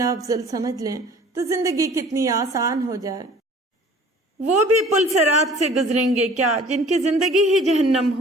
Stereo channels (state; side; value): normal; both; correlation 0.49